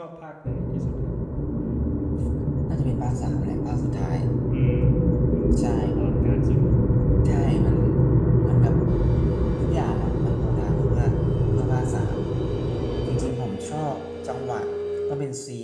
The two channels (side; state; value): both; identical; correlation 1.00